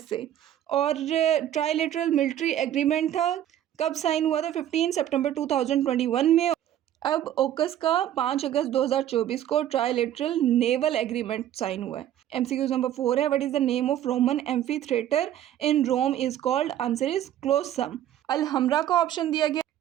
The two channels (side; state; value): left; quieter; 11.6 dB